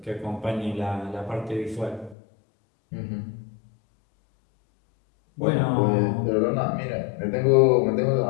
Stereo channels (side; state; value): right; drops out; at 2.1 s